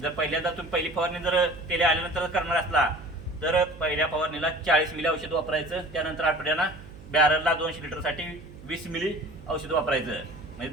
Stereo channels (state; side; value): noise; right; hum, 17 dB below the sound